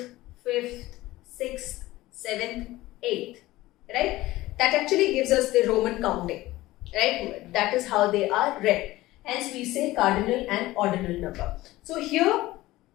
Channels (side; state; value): right; quieter; 17.7 dB